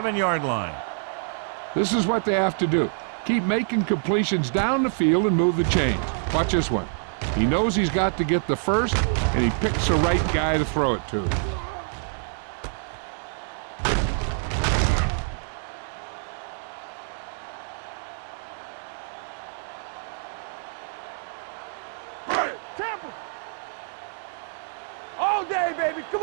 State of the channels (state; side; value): silent; left; digital silence